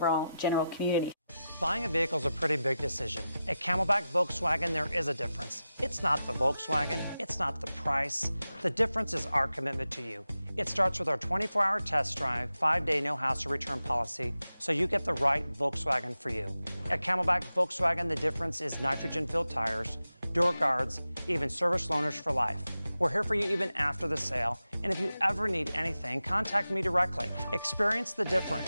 general community. Buying a vehicle is a pretty big decision. At Camelback Volkswagen, there is a difference. It's not the Volkswagen, it's not the price. The difference is our commitment to you. It starts with our 24-hour test drive, 5-day no-hassle return policy, so you get the right Volkswagen for you. At Camelback Volkswagen, the difference is nitrogen-filled tires, door guards, even service loaners for life. We're here for you even after the sale, and if you ever need anything, contact me directly. Experience the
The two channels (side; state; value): both; inverted; correlation -0.92